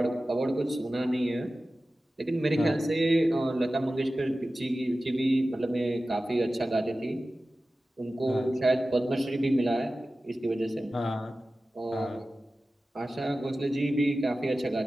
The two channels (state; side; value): normal; both; correlation 0.95